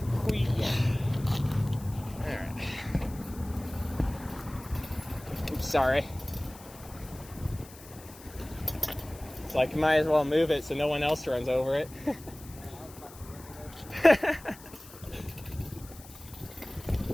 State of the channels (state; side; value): noise; left; hiss, 19 dB below the sound